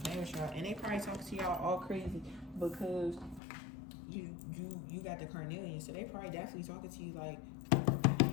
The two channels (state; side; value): drops out; right; at 3.4 s